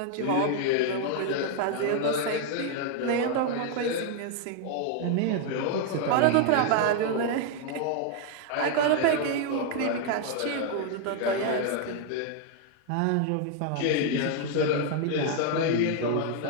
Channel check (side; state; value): both; different; correlation 0.00